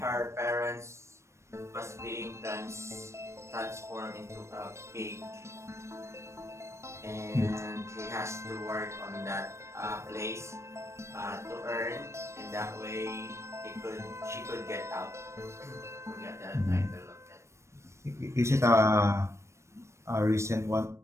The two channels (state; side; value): late; left; 0.13 ms